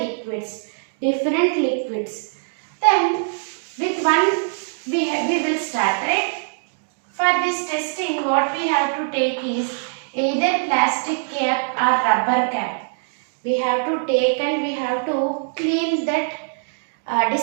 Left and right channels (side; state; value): left; silent; digital silence